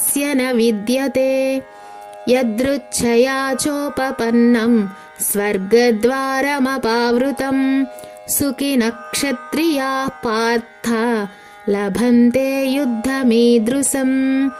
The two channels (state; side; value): identical; both; correlation 1.00